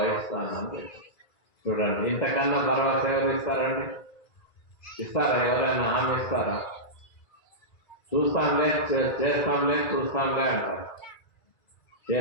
అని చెప్పి. చూడండి, ఇంతకన్నా భరోసా ఎవరు ఇస్తారండి? ఇస్తారా? ఎవరైనా హామీ ఇస్తారా? చూస్తాంలే, చేస్తాంలే, చూస్తాంలే అంటారు.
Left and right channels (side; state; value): right; late; 1.9 ms